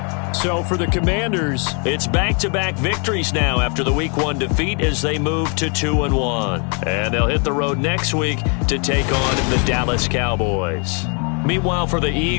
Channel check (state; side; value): quieter; right; 37.4 dB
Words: So for the Commanders, it's back-to-back victories now after the Week 1 defeat as they move to 2-1. And they'll hit the road next week to take on the Dallas Cowboys. Meanwhile, for the